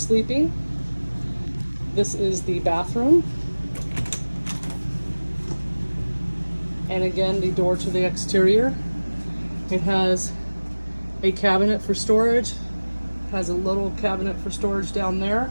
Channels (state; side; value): inverted; both; correlation -1.00